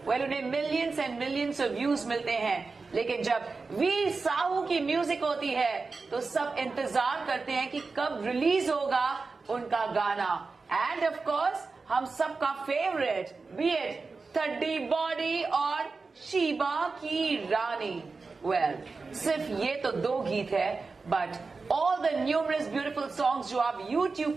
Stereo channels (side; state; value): left; quieter; 4.2 dB